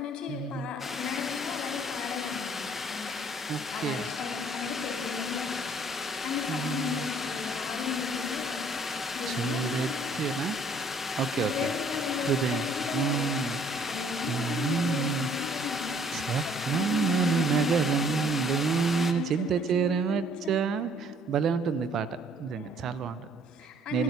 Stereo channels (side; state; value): both; normal; correlation 0.60